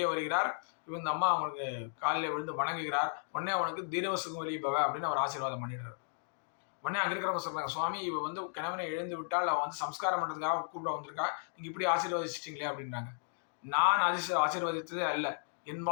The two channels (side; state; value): right; silent; digital silence